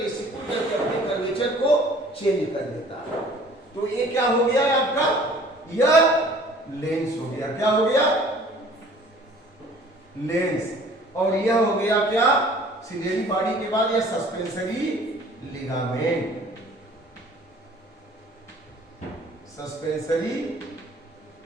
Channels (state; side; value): normal; both; correlation 0.52